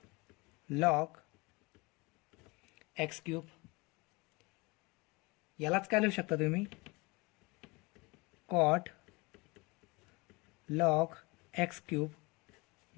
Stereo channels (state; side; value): quieter; right; 25.7 dB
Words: log x cube. यालाच काय लिहू शकता तुम्ही, कॉट लॉग एक्स क्यूब